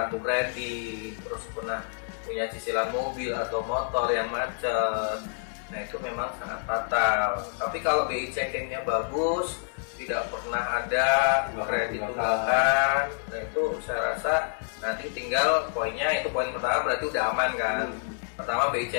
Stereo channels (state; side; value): silent; right; digital silence